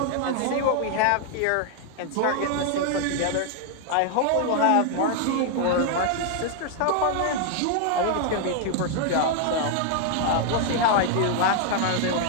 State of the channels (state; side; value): different; both; correlation 0.00